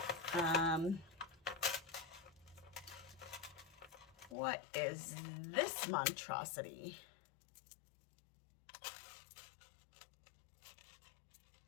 What is this monstrosity?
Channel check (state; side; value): drops out; right; at 4.4 s